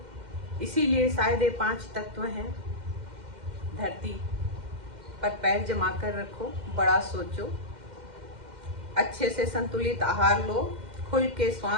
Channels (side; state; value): left; late; 2.1 ms